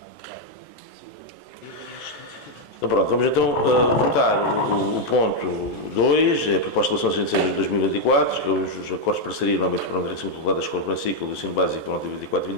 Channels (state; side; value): late; right; 14 ms